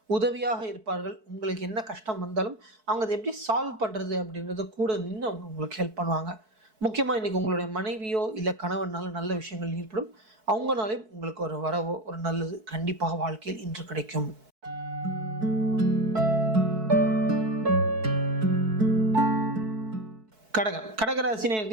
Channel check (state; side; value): late; left; 4.6 ms